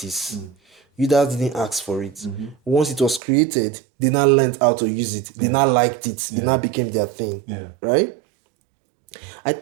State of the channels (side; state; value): left; drops out; at 3.2 s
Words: Users didn't ask for it. Once it was created, they now learned how to use it. They now liked it. It now became their thing. Yeah. Right? I